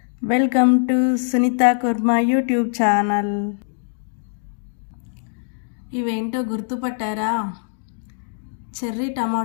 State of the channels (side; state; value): right; silent; digital silence